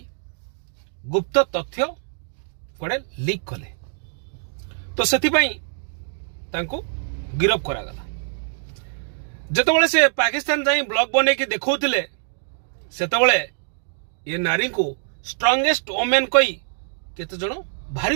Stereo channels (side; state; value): left; silent; digital silence